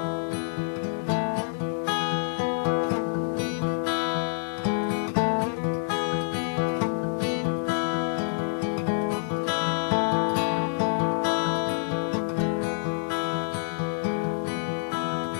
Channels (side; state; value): right; silent; digital silence